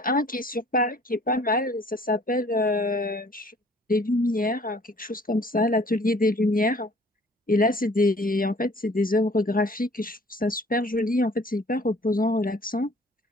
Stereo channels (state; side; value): normal; both; correlation 0.54